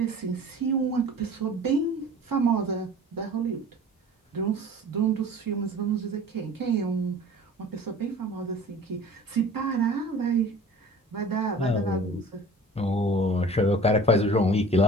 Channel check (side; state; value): both; normal; correlation 0.44